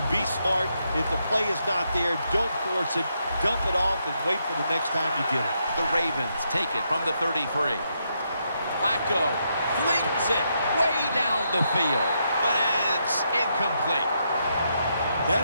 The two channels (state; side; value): inverted; both; correlation -0.79